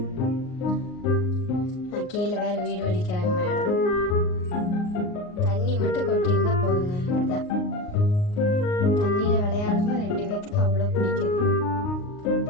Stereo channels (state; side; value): late; right; 39 ms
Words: கீழே வேறு வீடு வலிக்கிறாங்க மேடம். தண்ணி மட்டும் கொட்டியிருந்தா போதுங்க. இப்படிதான் தண்ணியில் விளையாடுறதுன்னு 2 பேத்துக்கு அவ்வளோ பிடிக்குது.